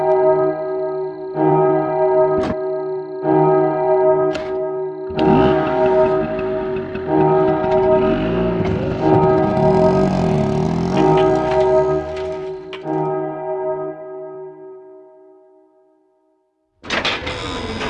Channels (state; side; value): identical; both; correlation 1.00